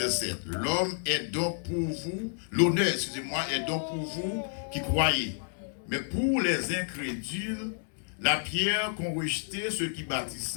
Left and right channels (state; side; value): silent; right; digital silence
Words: 7. L'homme est donc pour vous, l'honneur, excusez-moi, est donc pour vous qui croyez. Mais pour les incrédules, la pierre qu'ont rejeté ceux qui